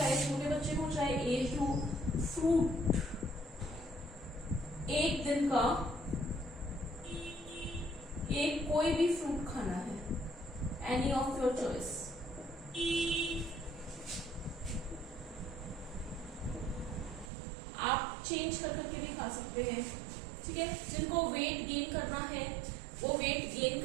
छोटे बच्चे हो, चाहे एज हो, फ्रूट एक दिन का एक कोई भी फ्रूट खाना है, एनी ऑफ योर चॉइस। आप चेंज कर करके भी खा सकते हैं। ठीक है, जिनको वेट गेन करना है वो वेट गेन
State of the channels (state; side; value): drops out; left; at 17.3 s